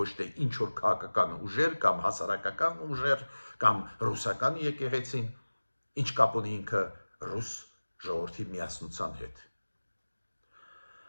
թե ինչ որ քաղաքական ուժեր կամ հասարակական ուժեր կամ ռուսական եկեղեցին, ինչ կապ ունի ինքը ռուս ժողովրդի միասնության հետ։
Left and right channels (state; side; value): inverted; both; correlation -1.00